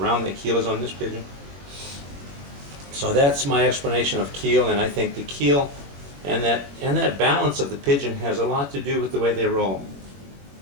round the keel is on this pigeon? So that's my explanation of keel, and I think the keel and that balance of the pigeon has a lot to do with the way they roll.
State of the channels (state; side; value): late; left; 21 ms